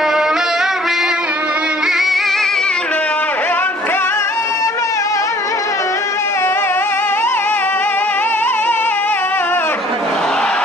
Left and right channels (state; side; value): normal; both; correlation 0.55